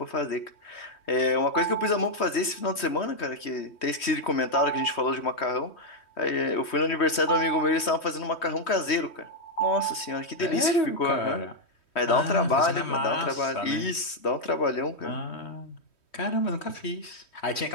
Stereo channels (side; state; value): right; late; 3.1 ms